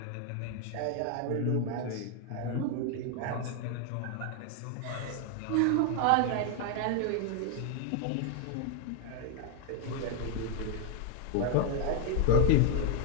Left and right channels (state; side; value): different; both; correlation 0.00